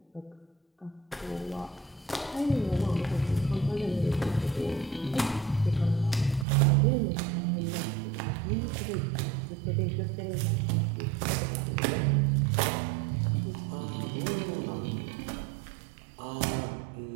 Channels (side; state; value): left; drops out; at 6.5 s